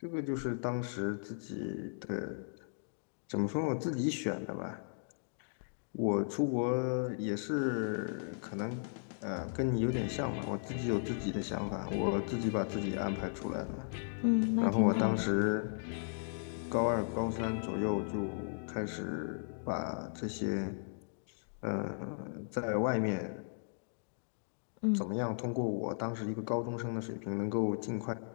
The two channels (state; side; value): silent; right; digital silence